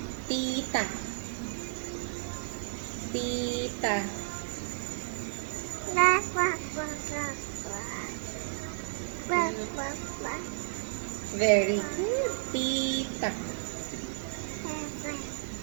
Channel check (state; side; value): silent; left; digital silence